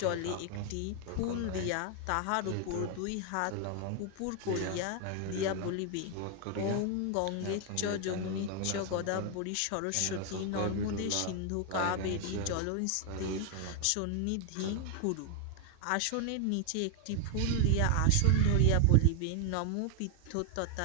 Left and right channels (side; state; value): both; different; correlation 0.00